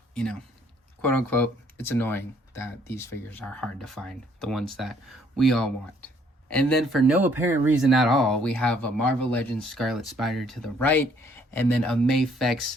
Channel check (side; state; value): both; normal; correlation 0.64